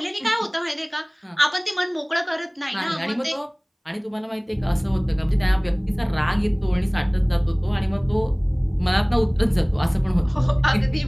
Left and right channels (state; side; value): identical; both; correlation 1.00